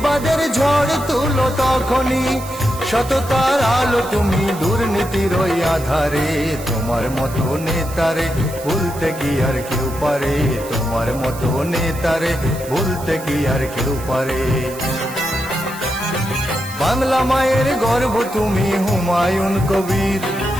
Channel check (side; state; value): right; noise; hiss, 15 dB below the sound